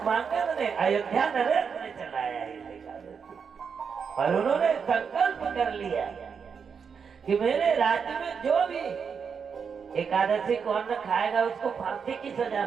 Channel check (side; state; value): left; quieter; 6.3 dB